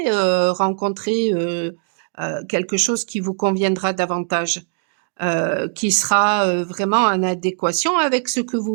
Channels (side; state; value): left; silent; digital silence